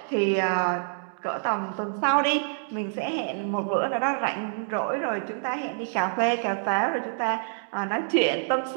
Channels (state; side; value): silent; left; digital silence